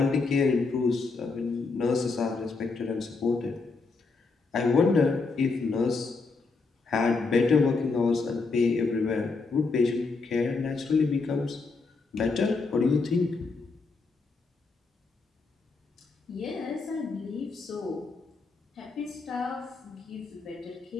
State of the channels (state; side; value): quieter; right; 4.2 dB